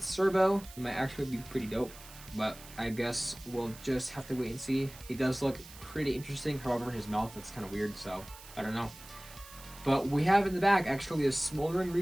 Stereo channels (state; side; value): noise; right; hiss, 18 dB below the sound